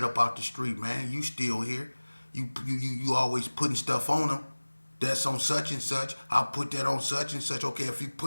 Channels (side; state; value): both; inverted; correlation -1.00